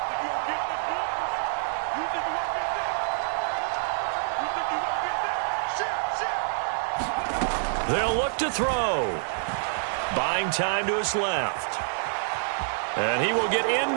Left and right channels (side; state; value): left; silent; digital silence